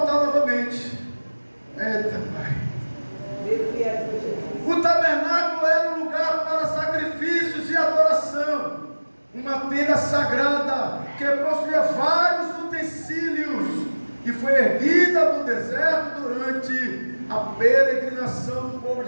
novamente. Eita, Pai. O tabernáculo era um lugar para sacrifícios e adoração. Uma tenda sagrada que possuía vários utensílios e foi erguida no deserto durante a peregrinação do povo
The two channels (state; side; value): inverted; both; correlation -1.00